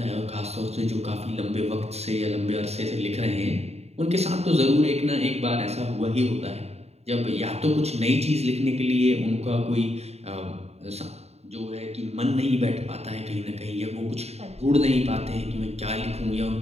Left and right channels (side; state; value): left; late; 0.31 ms